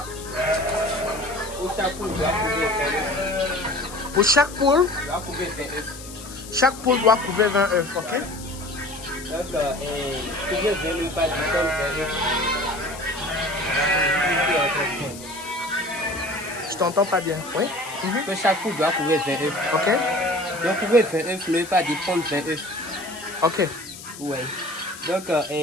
Pour chaque poule doit couver 20 œufs. Pour chaque poule, Doit couver 20 œufs. chaque poule doit couver 20 œufs, ok? Donc, couver 20 œufs, pas du tout 20 œufs. Je t'entends pas bien, oui? Que chaque poule doit couvrir 20 œufs. Ok? Donc, couvrir 20 œufs, ne veut pas dire prendre 20 œufs. Ok. Oui. Donc,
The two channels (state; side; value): noise; left; hiss, 15 dB below the sound